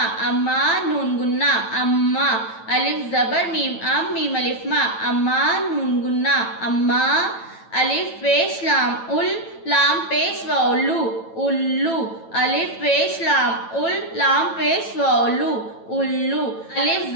अम्मा। नून गुन्ना, अम्मा। अलिफ जबर मीम अम, मीम अलिफ मा, अम्मा। नून गुन्ना, अम्मा। अलिफ पेश लाम उल, लाम पेश व उल्लू, उल्लू। अलिफ पेश लाम उल, लाम पेश व उल्लू, उल्लू। अलिफ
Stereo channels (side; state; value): right; late; 9.0 ms